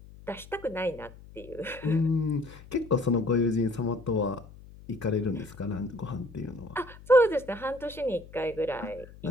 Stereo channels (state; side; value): noise; left; hum, 19 dB below the sound